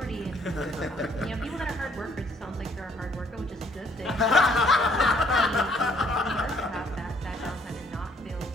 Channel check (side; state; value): both; normal; correlation 0.64